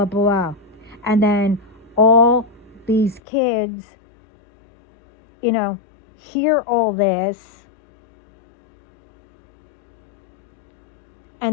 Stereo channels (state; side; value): drops out; right; at 3.2 s